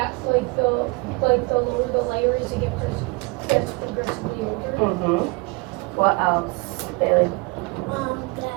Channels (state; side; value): quieter; left; 27.0 dB